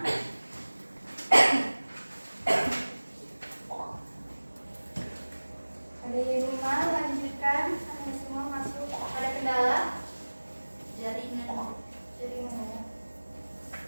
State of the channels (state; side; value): inverted; both; correlation -1.00